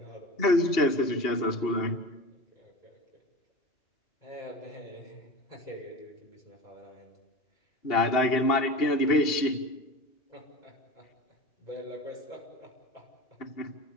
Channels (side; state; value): right; late; 2.7 ms